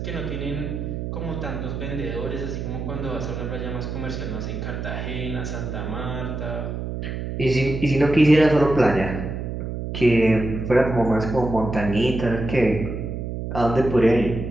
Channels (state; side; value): noise; right; hum, 5 dB below the sound